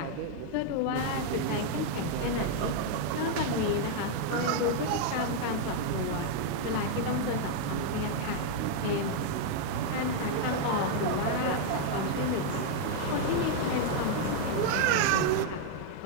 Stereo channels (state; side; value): different; both; correlation 0.00